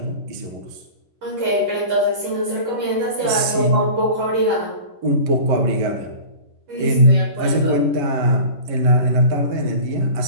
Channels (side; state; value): left; late; 11 ms